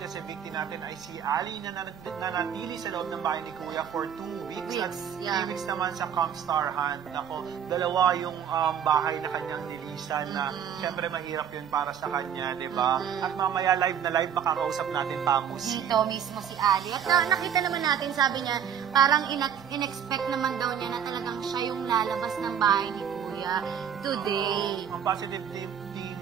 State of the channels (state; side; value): quieter; left; 8.5 dB